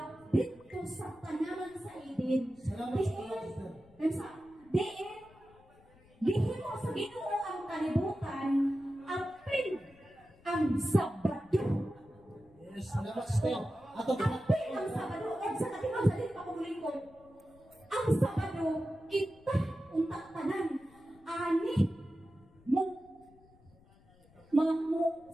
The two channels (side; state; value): left; noise; rumble, 27 dB below the sound